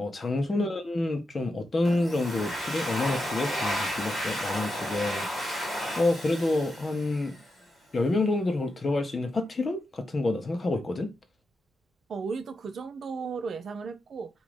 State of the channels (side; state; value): both; normal; correlation 0.87